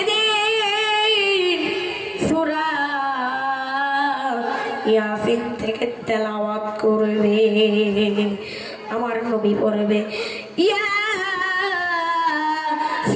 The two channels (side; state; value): both; identical; correlation 1.00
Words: সূরা ইয়াসিন থেকে তেলাওয়াত করবে। আমার নবী পড়বে